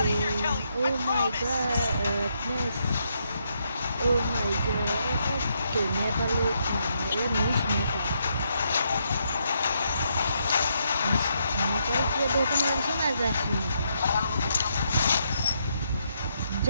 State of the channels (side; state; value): both; inverted; correlation -0.77